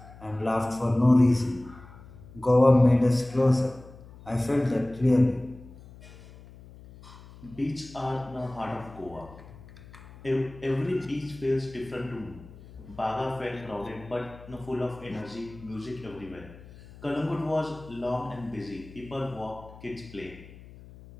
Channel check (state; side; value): noise; left; hum, 19 dB below the sound